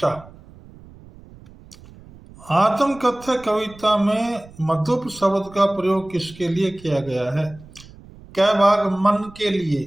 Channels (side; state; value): right; noise; rumble, 21 dB below the sound